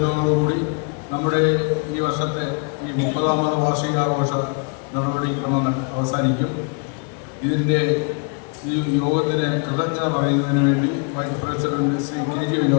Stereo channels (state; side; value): quieter; right; 37.8 dB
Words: നമ്മുടെ ഈ വർഷത്തെ ഈ 30ാമത് വാർഷികാഘോഷ നടപടിക്രമം അവസാനിക്കും. ഇതിൻ്റെ ഈ യോഗത്തിന് കൃതജ്ഞത പറയുന്നതിന് വേണ്ടി vice president Shri K G